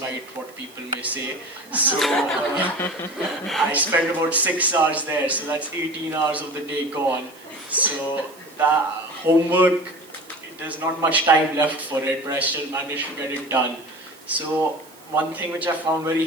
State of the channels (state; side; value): noise; right; hiss, 24 dB below the sound